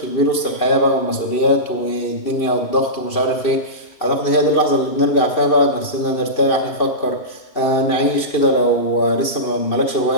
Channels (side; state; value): right; late; 2.7 ms